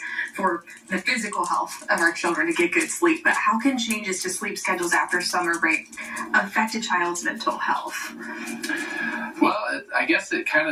for the physical health of our children to get good sleep, but how can changes to sleep schedules after summer break affect a child's mental health? Well, I guess it kind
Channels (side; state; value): both; identical; correlation 1.00